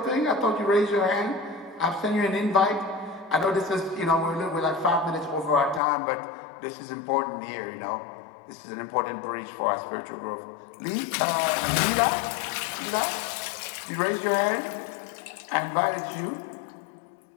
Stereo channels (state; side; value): drops out; right; at 5.8 s